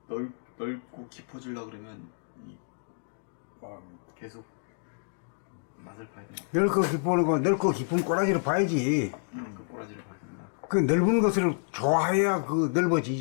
넓고 깊어지려 그러면 계속 맛을 봐야 되나? 넓고 깊은 거, 넓고 깊은 꼬라지를 봐야지. 그 꼬라지를 봐야 된다. 그 넓은 것을 좋아해야 그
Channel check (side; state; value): right; silent; digital silence